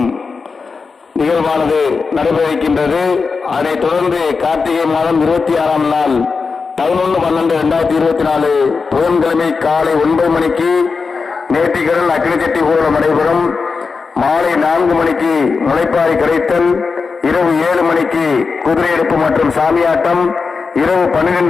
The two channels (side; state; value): right; quieter; 4.8 dB